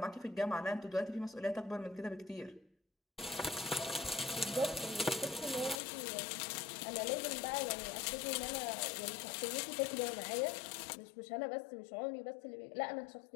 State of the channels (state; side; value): drops out; right; at 5.8 s